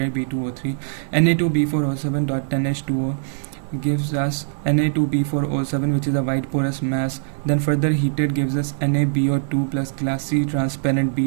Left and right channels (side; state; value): left; silent; digital silence